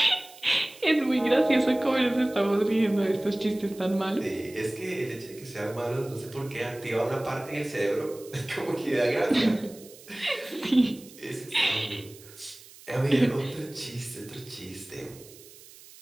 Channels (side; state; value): right; noise; hiss, 21 dB below the sound